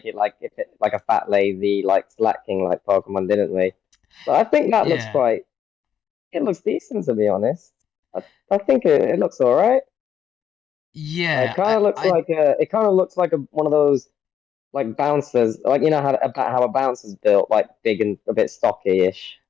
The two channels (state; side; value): quieter; right; 8.9 dB